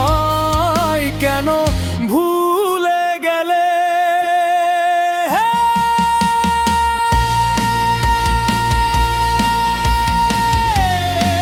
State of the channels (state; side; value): identical; both; correlation 1.00